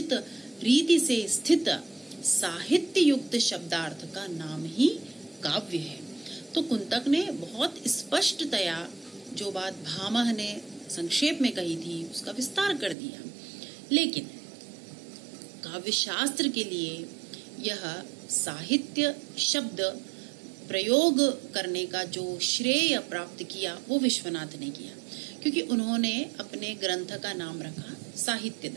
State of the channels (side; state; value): left; drops out; at 13.0 s